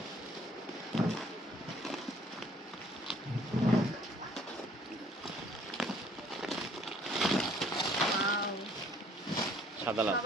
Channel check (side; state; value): both; normal; correlation 0.58